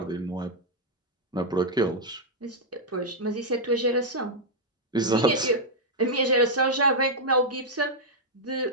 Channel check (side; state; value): both; normal; correlation -0.03